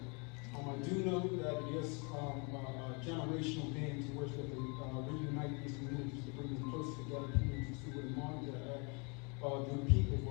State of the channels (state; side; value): quieter; right; 33.1 dB